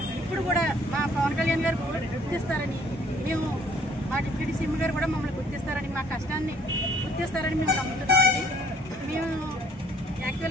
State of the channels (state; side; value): normal; both; correlation 0.60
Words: ఇప్పుడు కూడా మా పవన్ కళ్యాణ్ గారు గుర్తిస్తారని, మేము మా డిప్యూటీ సీఎం గారు కూడా మమ్మల్ని గుర్తిస్తారని, మా కష్టాన్ని గుర్తిస్తారని మేము నమ్ముతున్నామండి. మేము